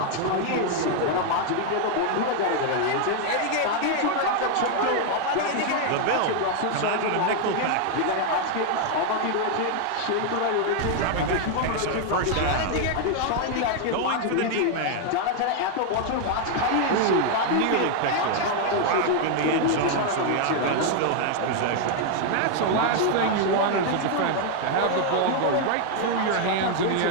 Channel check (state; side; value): different; both; correlation 0.00